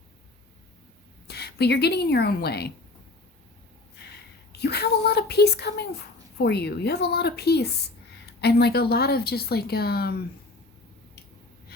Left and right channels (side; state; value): right; quieter; 3.1 dB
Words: But you're getting in your own way. You have a lot of peace coming for you. You have a lot of peace. And like a lot of just like